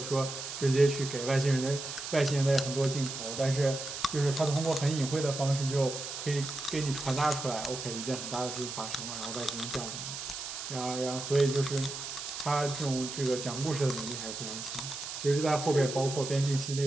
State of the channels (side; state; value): right; noise; hiss, 7 dB below the sound